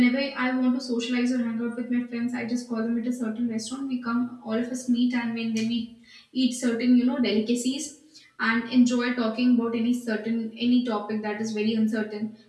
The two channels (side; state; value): both; identical; correlation 1.00